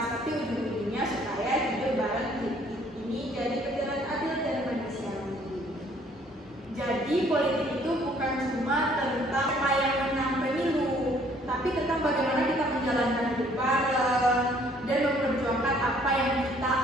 tapi ujung-ujungnya supaya hidup bareng ini jadi perjalanan adil dan manusiawi. Jadi politik itu bukan cuma tentang apa yang menang pemilu, tapi tentang bagaimana kita menjalankan hidup bareng dan memperjuangkan apa yang kita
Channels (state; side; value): normal; both; correlation 0.61